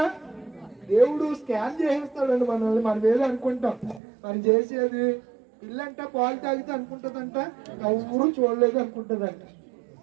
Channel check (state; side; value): drops out; left; at 4.0 s